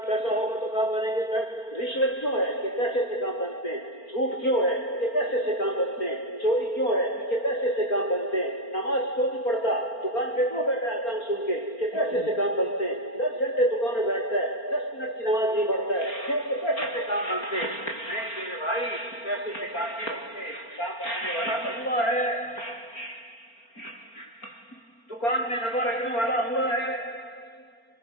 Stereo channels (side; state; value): right; late; 4.4 ms